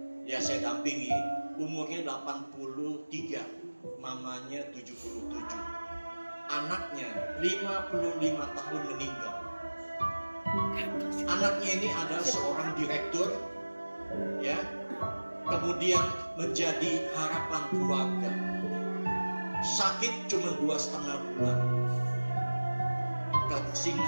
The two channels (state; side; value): inverted; both; correlation -1.00